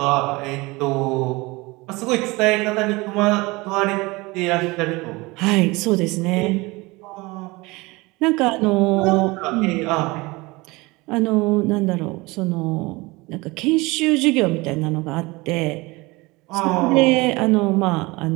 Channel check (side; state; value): left; quieter; 23.3 dB